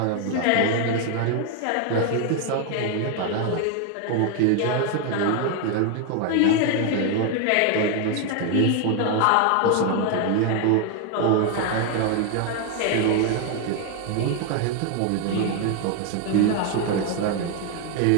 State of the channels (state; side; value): different; both; correlation 0.01